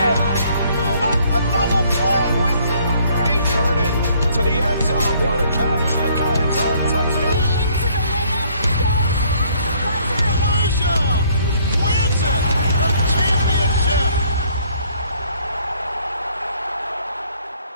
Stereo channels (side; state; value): both; inverted; correlation -0.63